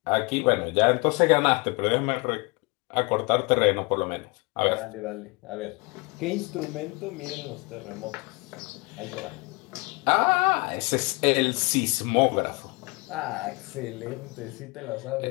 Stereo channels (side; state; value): right; quieter; 28.1 dB